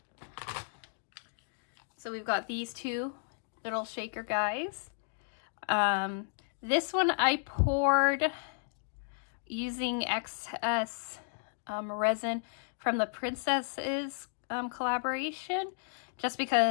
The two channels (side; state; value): right; silent; digital silence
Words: So we've got these two little shaker guys. This one I poured using excess resin from the Princesses collaboration, just